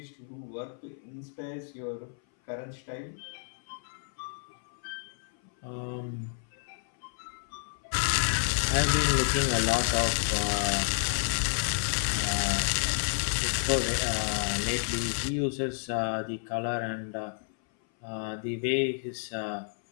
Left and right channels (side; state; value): right; silent; 58 dB below the other